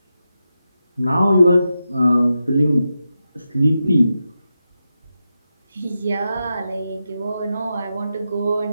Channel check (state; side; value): inverted; both; correlation -0.89